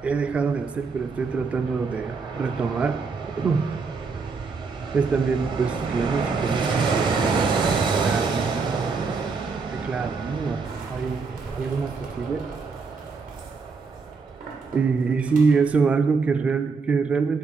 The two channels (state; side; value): quieter; left; 4.7 dB